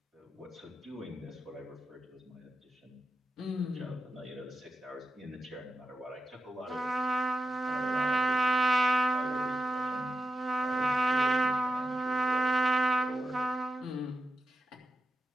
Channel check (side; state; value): both; normal; correlation 0.89